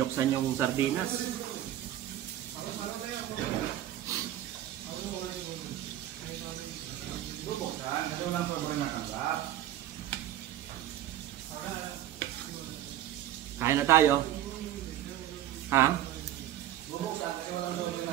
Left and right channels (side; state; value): left; quieter; 12.5 dB